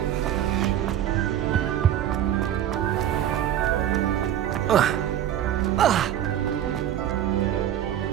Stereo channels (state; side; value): quieter; left; 11.0 dB